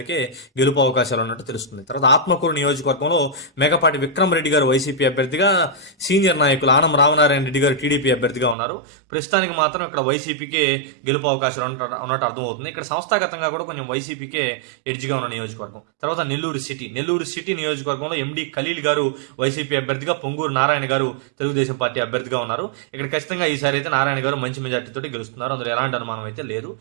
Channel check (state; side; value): drops out; left; at 8.6 s